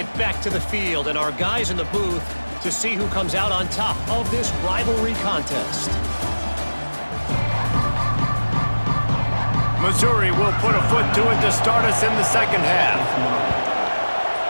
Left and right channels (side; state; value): both; inverted; correlation -1.00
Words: back to the field and our guys in the booth to see who comes out on top of this rivalry contest. Missouri will put a foot to it to start us in the second half.